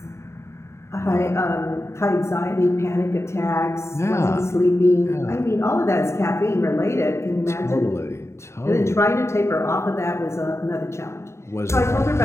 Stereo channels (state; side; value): late; right; 0.13 ms